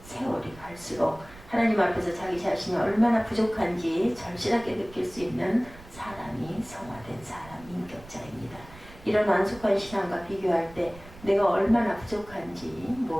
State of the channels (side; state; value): right; noise; rumble, 20 dB below the sound